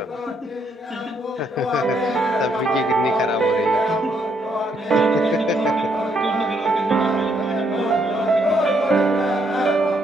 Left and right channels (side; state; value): both; normal; correlation 0.73